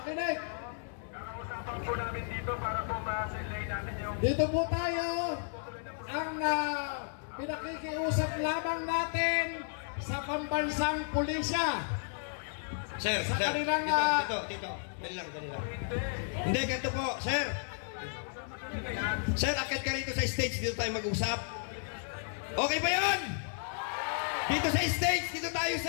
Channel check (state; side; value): silent; right; digital silence